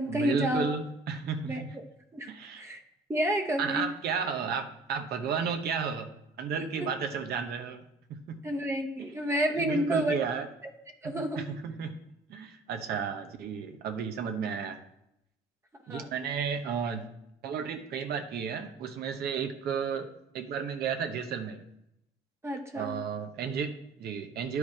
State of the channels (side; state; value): left; quieter; 3.5 dB